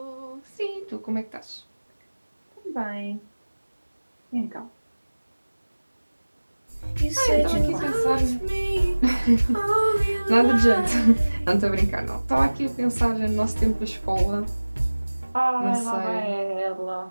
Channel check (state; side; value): inverted; both; correlation -1.00